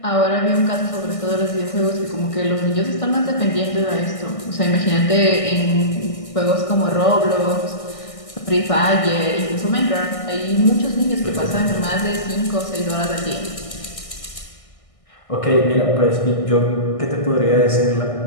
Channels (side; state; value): right; late; 1.6 ms